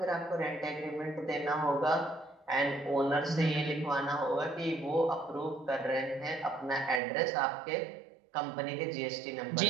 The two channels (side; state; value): left; drops out; at 7.0 s